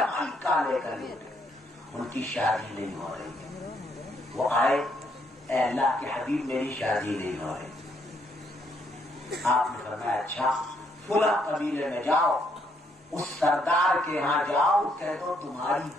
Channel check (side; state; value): both; normal; correlation 0.72